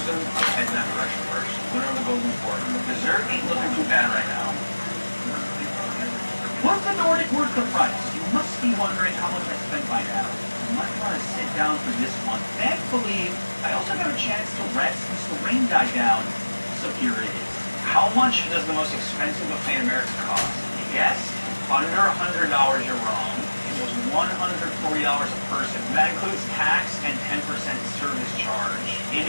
Once the Nordic worth the price, you must be wondering how much I spent by now. You might want to sit down for this one. Thankfully, I also got a chance to rest since the rain died down. So here it is. How much does the most expensive buffet in America cost? You guessed? Under $100, you're wrong. It was $140 a person. That includes tax and 10% service charge. It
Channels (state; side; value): inverted; both; correlation -1.00